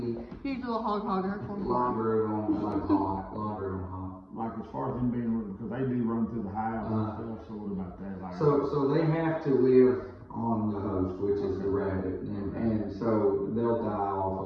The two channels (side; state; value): both; identical; correlation 1.00